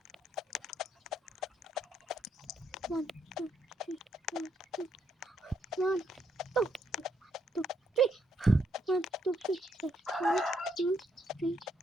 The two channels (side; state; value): both; normal; correlation 0.75